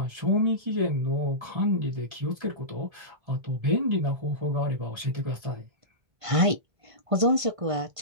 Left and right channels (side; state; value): left; late; 1.5 ms